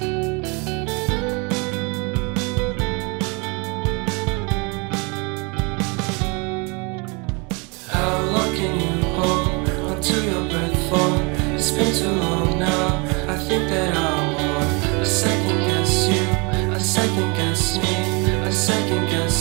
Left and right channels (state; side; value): quieter; left; 30.5 dB